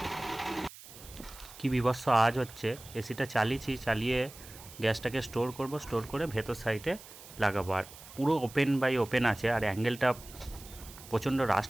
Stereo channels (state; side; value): noise; right; hiss, 17 dB below the sound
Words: কি বিভৎস আওয়াজ হচ্ছে। এসিটা চালিয়েছি, চালিয়ে গ্যাসটাকে স্টোর করে ভেতর সাইডে লাগাবো। আর পুরো ওপেন বাই ওপেন আছে, আর অ্যাঙ্গেলটা প্রচণ্ড